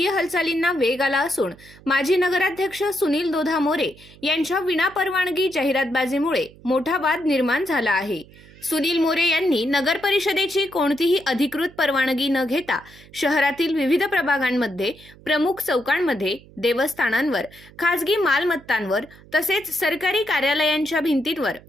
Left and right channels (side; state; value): right; noise; hum, 23 dB below the sound